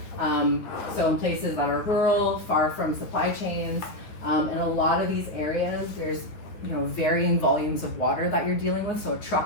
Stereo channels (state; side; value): late; right; 9.2 ms